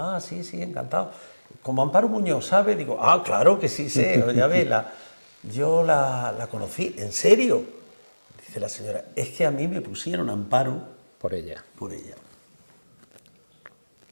sí, sí, encantado. Como Amparo Muñoz, ¿sabe? Digo, ah, claro que sí sé, ya ve, yo la conocí, ¿en serio? Dice la señora, es que a mí me pusieron Amparo por ella. Por ella.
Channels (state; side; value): inverted; both; correlation -1.00